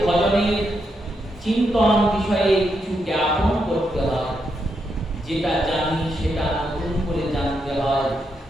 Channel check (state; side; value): normal; both; correlation 0.81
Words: ভজনের চিন্তন বিষয়ে কিছু জ্ঞাপন করতে হয়। যেটা জানি সেটা নতুন করে জানতে হয়,